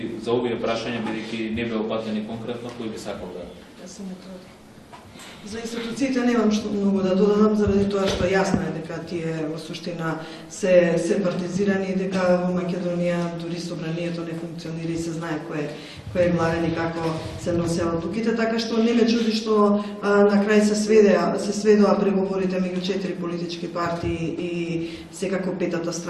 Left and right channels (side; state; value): both; identical; correlation 1.00